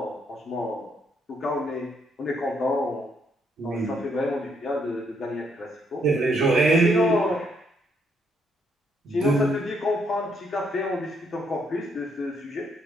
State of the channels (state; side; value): normal; both; correlation 0.73